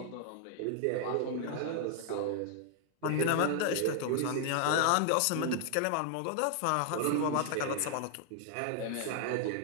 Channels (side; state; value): both; different; correlation 0.00